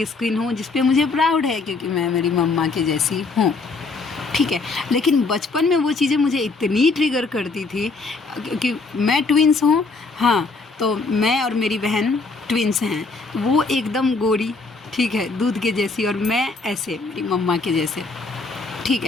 स्किन हूँ, जिस पे मुझे प्राउड है, क्योंकि मैं मेरी मम्मा के जैसी हूँ, ठीक है। लेकिन बचपन में वो चीज़ें मुझे इतनी ट्रिगर करती थी, क्योंकि मैं ट्विंस हूँ, हाँ, तो मैं और मेरी बहन ट्विंस हैं, वो एकदम गोरी, ठीक है, दूध के जैसी, और मैं ऐसे मेरी मम्मा के जैसे, ठीक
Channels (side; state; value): right; quieter; 3.9 dB